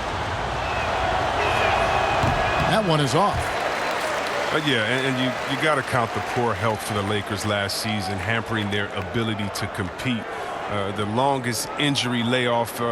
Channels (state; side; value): identical; both; correlation 1.00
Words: That one is off. Yeah, and you got to count the poor health for the Lakers last season, hampering their ability to compete. The longest injury layoff